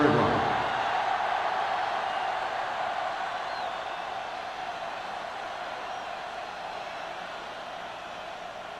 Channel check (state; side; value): identical; both; correlation 1.00